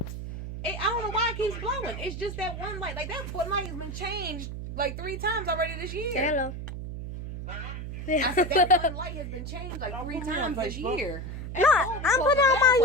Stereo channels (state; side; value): noise; right; hum, 7 dB below the sound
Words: I don't know why it keeps glowing. It's just that one light. Like, that light has been changed like 3 times already this year. Say hello. I said that one light has been changed like 3 times this year. No, I'm putting out my